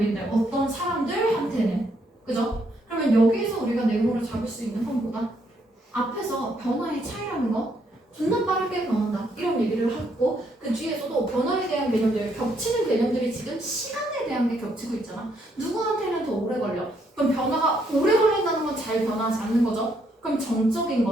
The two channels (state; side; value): normal; both; correlation 0.73